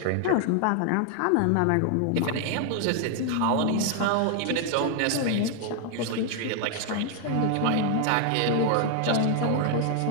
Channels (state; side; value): different; both; correlation 0.00